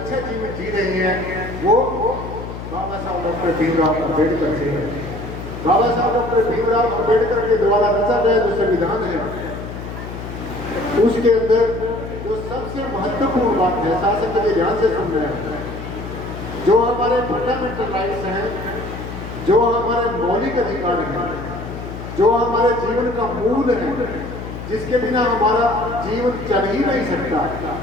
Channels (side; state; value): left; noise; hum, 9 dB below the sound